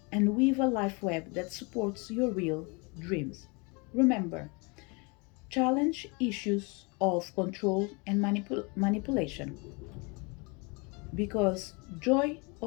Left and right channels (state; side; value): quieter; right; 30.2 dB